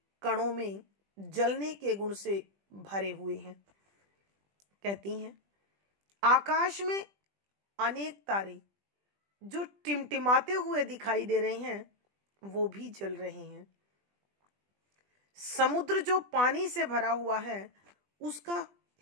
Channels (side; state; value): left; late; 20 ms